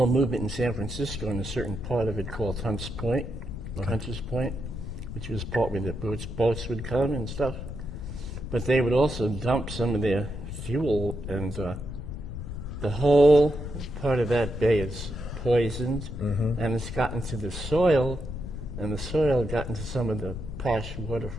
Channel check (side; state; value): left; noise; rumble, 7 dB below the sound